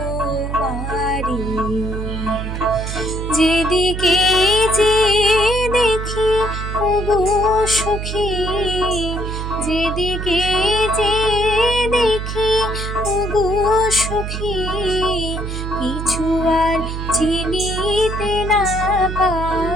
বাড়ি, যেদিকে যে দেখি ওগো সখী, যেদিকে যে দেখি ওগো সখী, কিছু আর চিনিতে না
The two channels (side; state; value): right; noise; hum, 5 dB below the sound